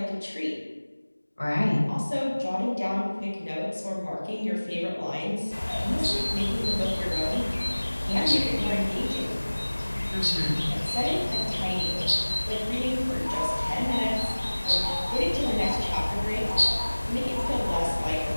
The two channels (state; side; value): inverted; both; correlation -1.00